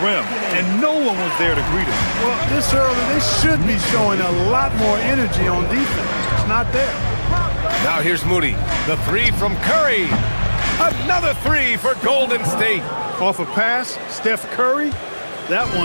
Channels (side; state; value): both; inverted; correlation -1.00